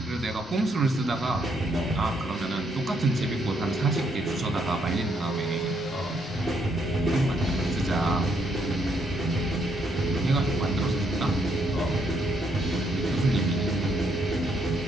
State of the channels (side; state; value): both; normal; correlation 0.73